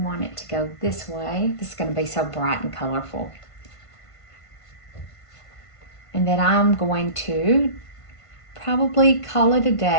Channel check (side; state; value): right; late; 1.5 ms